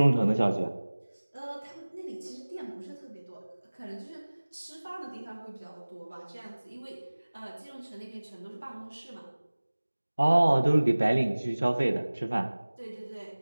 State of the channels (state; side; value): inverted; both; correlation -1.00